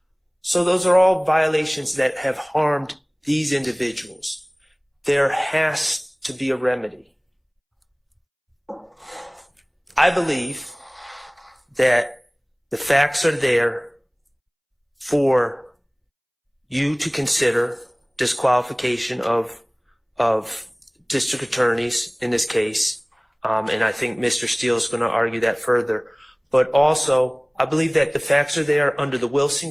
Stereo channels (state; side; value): identical; both; correlation 1.00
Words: So those are all violations that have harmed these individuals. There has to be a remedy. I believe that the facts are there for you to consider disqualification of district attorneys in this case. And I think Mr. Steele is going to argue that further. But also, I believe that the facts are there under the